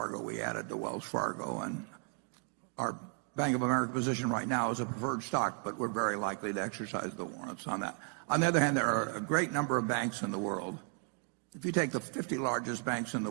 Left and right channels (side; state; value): left; quieter; 38.5 dB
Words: We added to Wells Fargo, and our Bank of America position right now is a preferred stock, but we're very likely to exercise the warrants on that. On the other hand, there are a great number of banks in the world. If you take the 50 largest banks in the